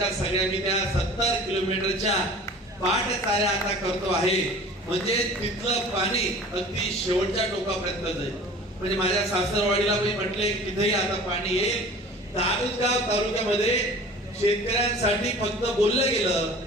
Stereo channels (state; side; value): normal; both; correlation 0.43